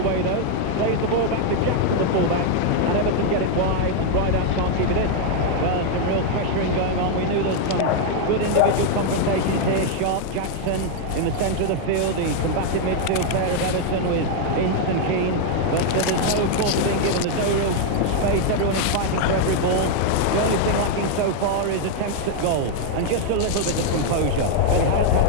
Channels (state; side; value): different; both; correlation 0.00